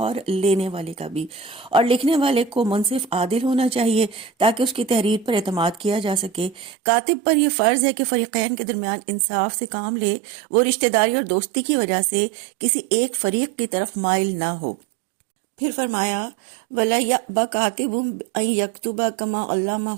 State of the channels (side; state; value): left; drops out; at 6.7 s